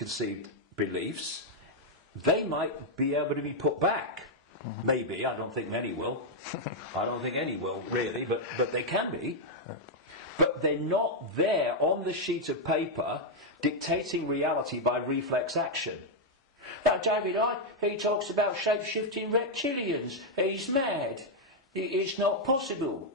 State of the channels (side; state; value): both; normal; correlation -0.01